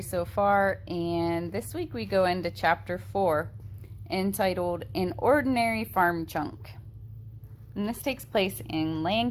so far, and this week we go into Chapter 4, entitled An Ordinary Farm Chunk. And this takes place in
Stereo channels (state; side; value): identical; both; correlation 1.00